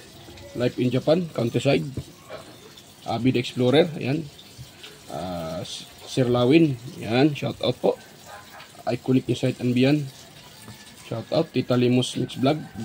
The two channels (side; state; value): both; identical; correlation 1.00